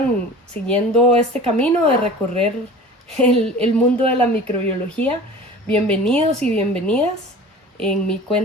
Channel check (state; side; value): normal; both; correlation 0.40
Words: siguiendo este camino de recorrer el mundo de la microbiología, bienvenidos y bienvenidas. En mí